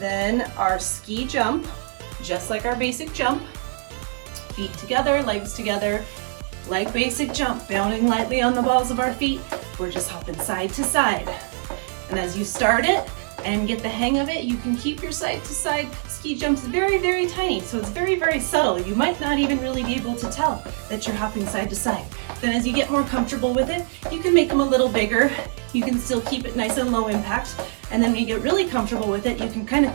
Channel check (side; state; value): left; silent; 63 dB below the other